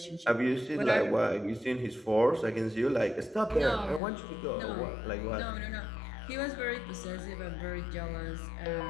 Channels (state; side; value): drops out; right; at 4.0 s